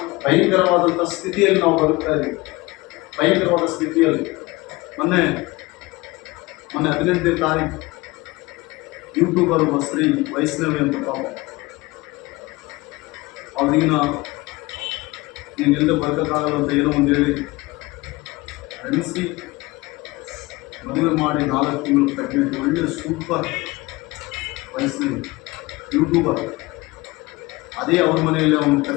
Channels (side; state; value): right; quieter; 21.9 dB